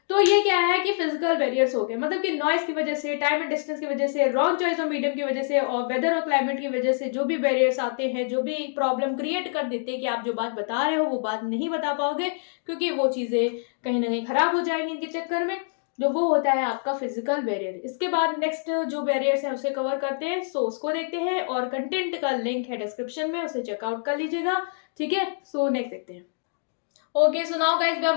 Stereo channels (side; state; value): right; silent; digital silence